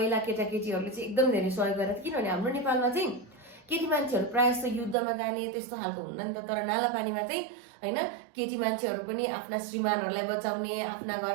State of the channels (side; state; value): left; drops out; at 5.0 s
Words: केटाकेटीहरूले चाहिँ एकदम धेरै सहयोग गरेको थियो, किनभने हाम्रो नेपालमा चाहिँ केटी मान्छेहरू प्रायः जस्तो युद्धमा जाने त्यस्तो खालको हुन्न नि त। तर नालापानीमा चाहिँ होइन केटी मान्छेहरू पनि आफ्ना श्रीमानहरूलाई बचाउने, आफ्ना